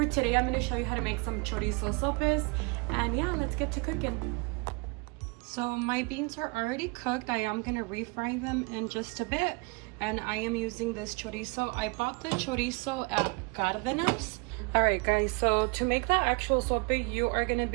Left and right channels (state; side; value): quieter; left; 29.8 dB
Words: today I'm going to show you how to make some Chorizo Sopes, and yeah, let's get to cooking. So my beans are already cooked. I am going to refry them in just a bit, and I am using this chorizo. I bought the chorizo at Cárdenas. Alright guys, so to make the actual sope, you are going to